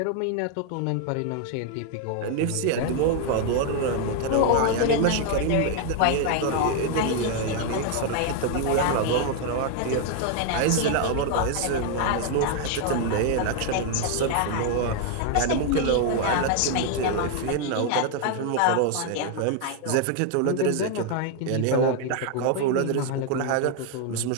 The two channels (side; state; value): both; different; correlation 0.00